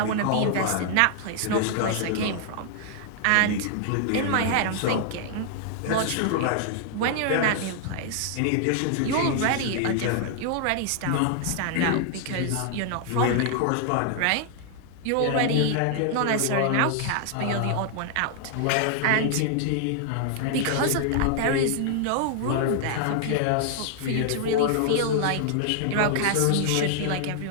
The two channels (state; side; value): different; both; correlation 0.00